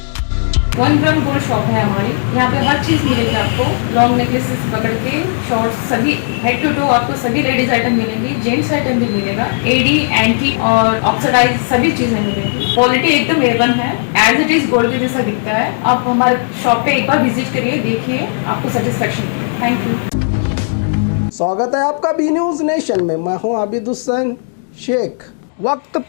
1 gram gold shop है हमारी। यहाँ पे हर चीज मिलेगी आपको, लॉन्ग नेकलेसेस पकड़ के शॉर्ट्स, सभी हेड टू टो आपको सभी लेडीज आइटम मिलेंगी, जेंट्स आइटम भी मिलेगा, एडी एंटी और ऑक्सीडाइज सभी चीजें मिलेंगी। क्वालिटी एकदम A1 है, एज इट इज गोल्ड के जैसा दिखता है। आप हमारे शॉप पे एक बार विजिट करिए, देखिए, आपको सेटिस्फेक्शन मिलेगा। Thank you. स्वागत है आपका बी न्यूज नेशन में। मैं हूं आबिद हुसैन शेख। वक्त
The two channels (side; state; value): right; silent; digital silence